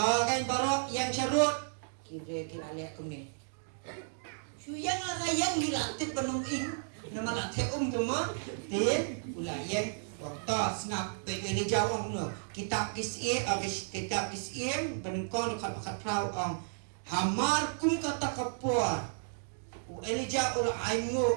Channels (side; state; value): left; silent; digital silence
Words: kan barok yang syarut kibre kilalek kumni. Suyang yang dilatih penunging nama latih cuma tin ulayan waktu snap ini jawab no kitab kisih kitab kisih penengkon kat prau hamar kum kata kapur Elijah ula